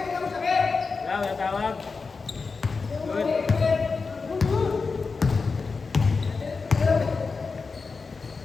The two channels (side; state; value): right; quieter; 4.5 dB